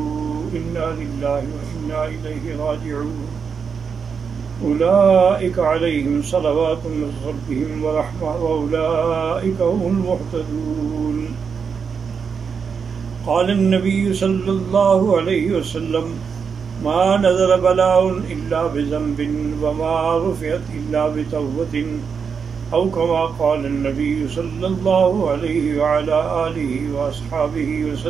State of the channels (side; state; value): left; quieter; 6.2 dB